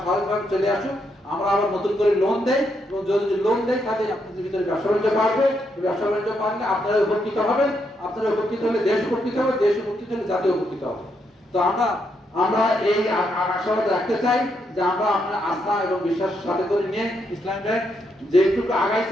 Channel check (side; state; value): both; normal; correlation 0.78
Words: স্বাভাবিকভাবে চলে আসুক, আমরা আবার নতুন করে লোন দেই। এবং যদি লোন দেই তাহলে আপনাদের ভিতরে ব্যবসা বাণিজ্য বাড়বে। ব্যবসা বাণিজ্য বাড়লে আপনারা উপকৃত হবেন, আপনারা উপকৃত হলে দেশ উপকৃত হবে, দেশ উপকৃত হলে জাতীয় উপকৃত হবে। তো আমরা এই আশাবাদ রাখতে চাই যে আমরা আপনার আস্থা এবং বিশ্বাসের সাথে করে নিয়ে ইসলামী ব্যাংক যেটুকু